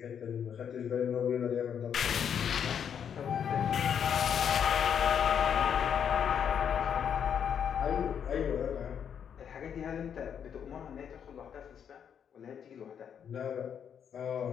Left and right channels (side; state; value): right; quieter; 8.1 dB